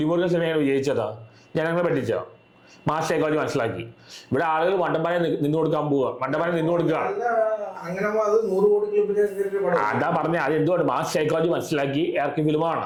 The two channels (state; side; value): identical; both; correlation 1.00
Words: സിനിമയാണ് വിജയിച്ചതാ, ജനങ്ങളെ പറ്റിച്ച മാസ് സൈക്കോളജി മനസ്സിലാക്കി. ഇവിടെ ആളുകൾ മണ്ടന്മാരെ നിന്ന് കൊടുക്കാൻ പോവുക, മണ്ടന്മാരെ നിന്ന് കൊടുക്കുകയാണ്. അതാ പറഞ്ഞ അത് എന്തുകൊണ്ട് മാസ് സൈക്കോളജി മനസ്സിലാക്കി ഇറക്കിയ